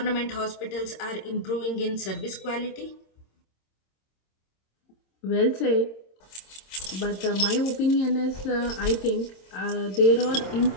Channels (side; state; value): right; late; 26 ms